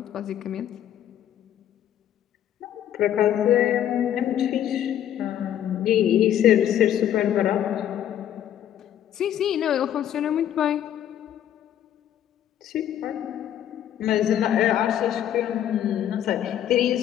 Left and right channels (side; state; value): right; quieter; 10.8 dB